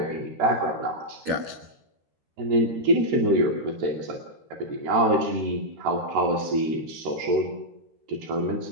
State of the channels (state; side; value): late; left; 13 ms